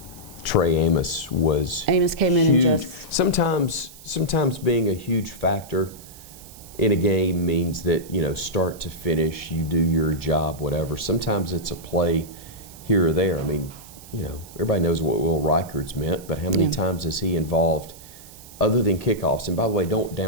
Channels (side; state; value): right; noise; hiss, 19 dB below the sound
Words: Trey Amos was came in and huge. just Sometimes being a huge factor in a game means that, you know, start to finish, you do your job, whatever. Sometimes it's a play here or there. I mean, you know, everybody knows what Will Reichard's meant, but how many times is he involved other than kickoffs? And by the way, don't